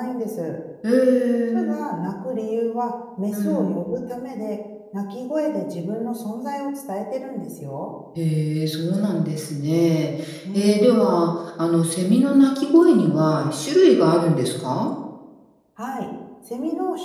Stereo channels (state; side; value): identical; both; correlation 1.00